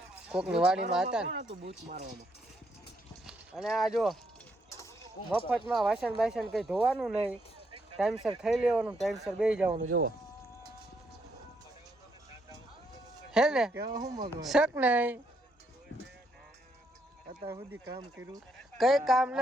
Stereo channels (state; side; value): normal; both; correlation 0.75